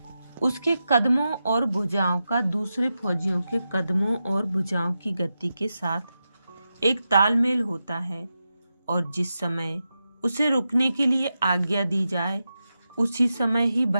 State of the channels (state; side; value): inverted; both; correlation -0.90